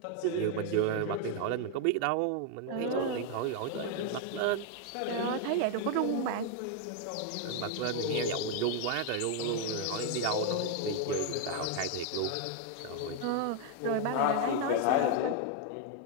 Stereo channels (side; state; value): both; different; correlation 0.00